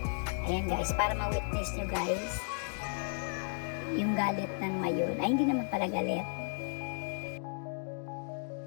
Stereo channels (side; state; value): right; silent; 55 dB below the other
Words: Ayan guys, para ma-witness nyo guys yung galit ng Mayon. Ay, hindi naman pala galit.